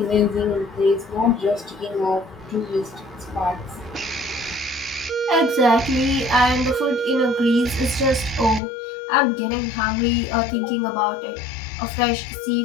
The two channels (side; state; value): right; drops out; at 8.6 s